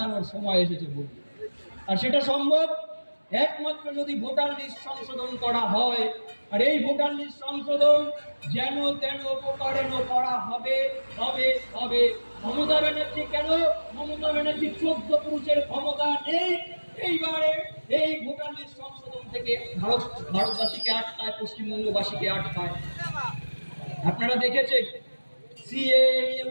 সময় এসেছে বলে। আর সেটা সম্ভব একমাত্র যদি ভোটার লিস্ট সংশোধন করা হয়। আর এই ভোটার লিস্ট সংশোধন যেন তেন প্রকারেণ করা হবে হবে হবে। মমতা ব্যানার্জি কেন? মমতা ব্যানার্জি 14 পুরুষের ক্ষমতা নেই। এইবারে এই ভোটার লিস্ট সংশোধন থেকে ভারতবাসীকে আটকায়, পশ্চিমবঙ্গবাসীকে আটকায়। আপনারা দেখেছেন সিএ নিয়ে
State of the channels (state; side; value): inverted; both; correlation -1.00